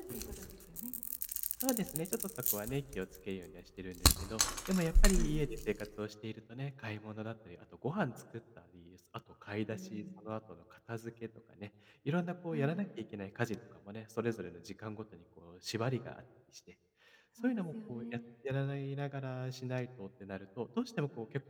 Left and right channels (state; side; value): identical; both; correlation 1.00